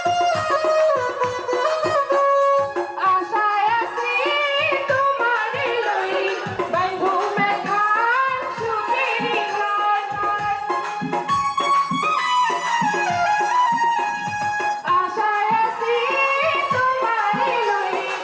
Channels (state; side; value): identical; both; correlation 1.00